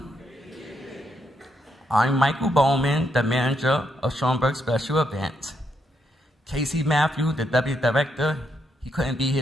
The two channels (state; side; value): normal; both; correlation 0.78